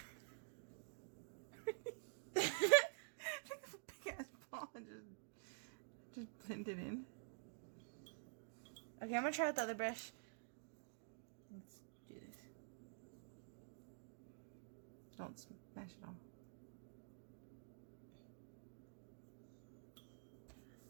Pick up a big ass ball and just blend it in. Okay, I'm gonna try with the other brush. Let's do this. Don't smash it all.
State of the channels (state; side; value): silent; left; digital silence